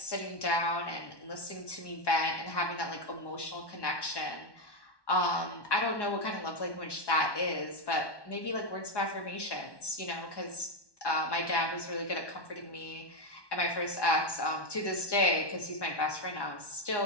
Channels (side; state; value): right; late; 1.1 ms